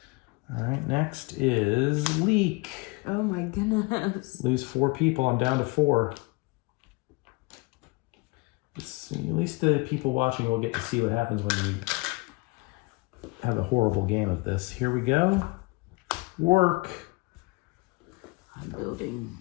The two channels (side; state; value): right; quieter; 26.9 dB